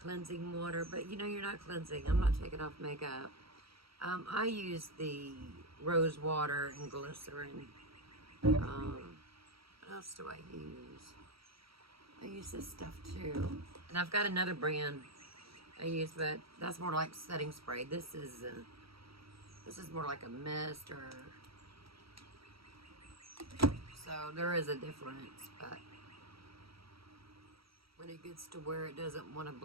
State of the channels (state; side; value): late; left; 0.75 ms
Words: cleansing water, but you know you're not cleansing. I'm not taking off makeup. I use the rose water and glycerin. What else do I use? I use this stuff too. And I've got another brand I use, but that's more like setting spray. This is more like a mist, or so there is a difference, but when it gets to where it doesn't want to